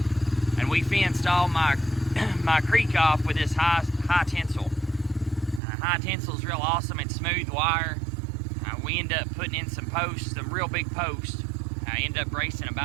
and we fenced all my creek off with this high tensile. High tensile is real awesome. It's smooth wire. We end up putting in some posts, some real big posts. I end up bracing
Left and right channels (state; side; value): drops out; left; at 5.6 s